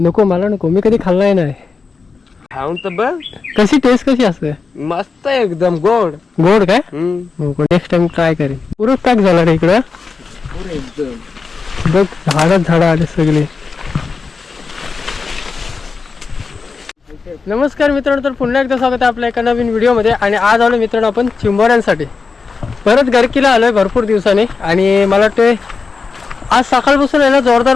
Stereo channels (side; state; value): right; quieter; 4.7 dB